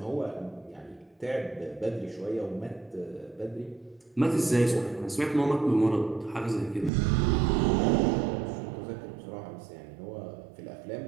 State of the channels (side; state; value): left; drops out; at 6.9 s